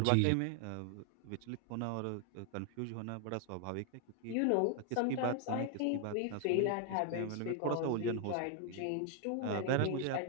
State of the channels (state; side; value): different; both; correlation 0.00